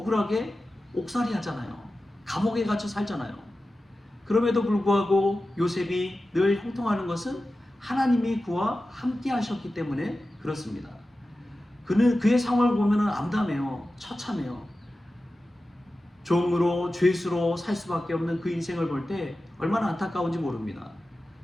옥살이 하잖아요. 감옥에 갇혀 살잖아요. 그럼에도 불구하고 요셉이 늘 형통하는 것은 하나님이 그와 함께 하셨기 때문에 그렇습니다. 그의 상황을 보면 암담해요. 처참해요. 종으로 죄수로 살 수밖에 없는 그 인생을 볼 때 얼마나 안타까운지 모릅니다.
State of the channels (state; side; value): normal; both; correlation 0.94